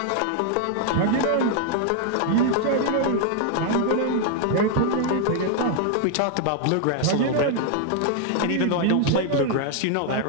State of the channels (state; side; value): different; both; correlation 0.00